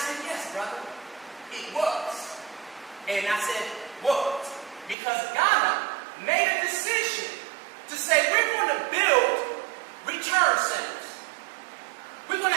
yes, brother, it was. And I said, was. Because Ghana made a decision to say, we're going to build return centers. We're going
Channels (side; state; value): left; drops out; at 5.0 s